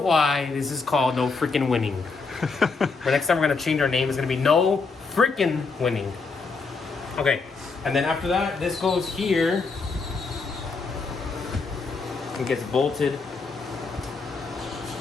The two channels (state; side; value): quieter; right; 4.4 dB